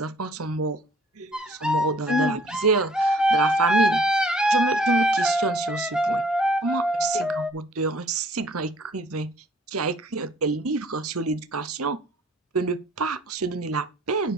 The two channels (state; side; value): normal; both; correlation 0.57